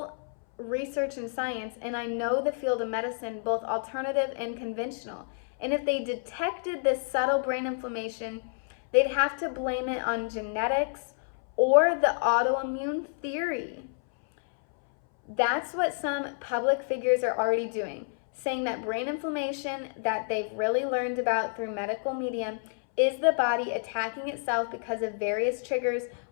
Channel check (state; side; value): silent; right; 59 dB below the other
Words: research and science, and I know the field of medicine, both alternative and conventional. And if they detected this subtle brain inflammation, they'd have to blame it on genetics or the autoimmune theory. That's what some public figures are already doing, saying that brain inflammation that they've really learned about through medical media is the body attacking itself because of various triggers,